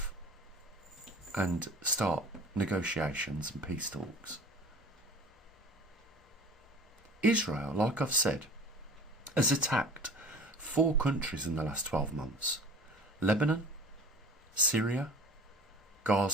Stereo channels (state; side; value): normal; both; correlation 0.42